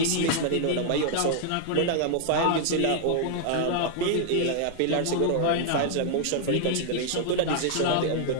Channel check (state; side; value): different; both; correlation 0.00